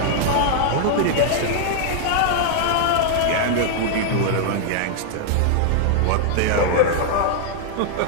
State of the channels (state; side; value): different; both; correlation -0.01